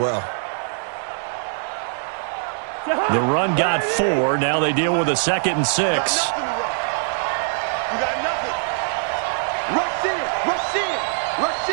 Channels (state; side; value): silent; left; digital silence